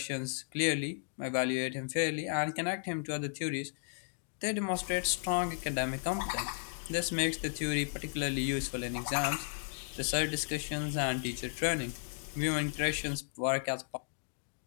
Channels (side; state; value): right; silent; digital silence